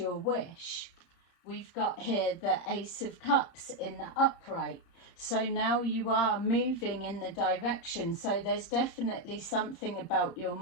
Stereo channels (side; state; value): right; late; 31 ms